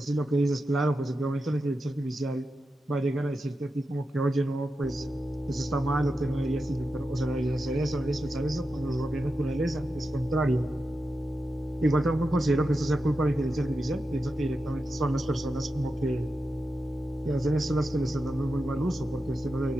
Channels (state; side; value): normal; both; correlation 0.90